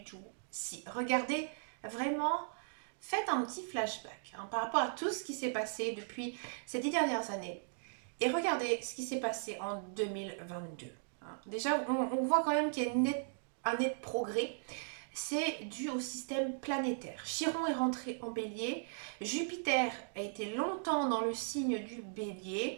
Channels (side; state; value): left; silent; digital silence